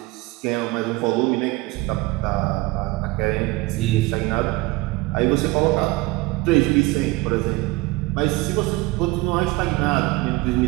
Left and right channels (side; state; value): left; quieter; 21.3 dB